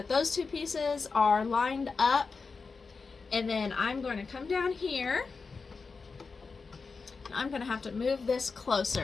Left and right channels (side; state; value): right; quieter; 4.6 dB